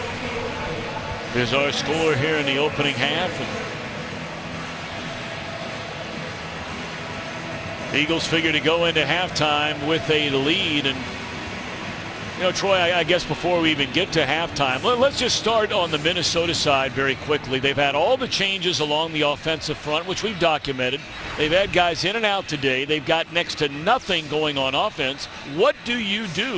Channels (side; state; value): both; identical; correlation 1.00